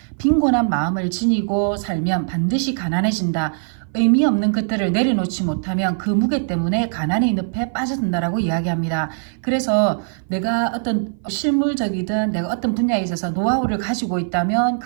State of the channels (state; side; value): silent; left; 58 dB below the other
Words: 빈곤한 마음을 지니고 살면 반드시 가난해진다. 의미 없는 것들을 내려놓지 못하면 그 무게 때문에 가난의 늪에 빠져든다라고 이야기합니다. 그래서 내가 어떤 실물적이든 내가 어떤 분야에 있어서 노하우를 가지고 있다면